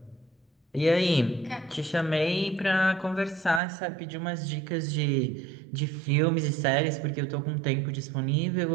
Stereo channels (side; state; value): left; drops out; at 3.6 s